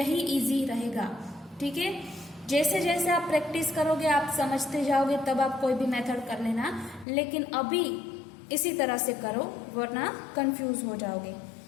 इजी रहेगा, ठीक है। जैसे जैसे आप प्रैक्टिस करोगे आप समझते जाओगे, तब आप कोई भी मेथड कर लेना, लेकिन अभी इसी तरह से करो वरना कंफ्यूज हो जाओगे।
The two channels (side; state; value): right; drops out; at 7.1 s